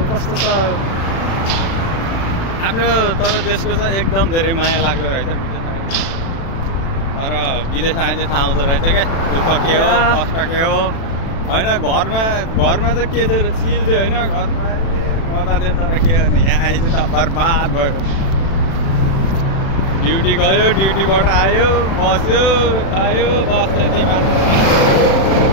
कस्तो छ आफ्नो। तर देशको चाहिँ एकदम धेरै माया लाग्दो रहेछ विदेश। तर विदेश आए चाहिँ थाहा हुँदो रहेछ क्या, दुःख के हो कष्ट के हो होइन। घरमा त के थियो चिल थियो होइन, घरमा मजा थियो। तर के गर्ने, यहाँ आएछ त बर्बाद भयो। ड्युटी गयो, ड्युटीबाट आयो, बस्यो खायो, बस त्यति मात्र।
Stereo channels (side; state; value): right; late; 36 ms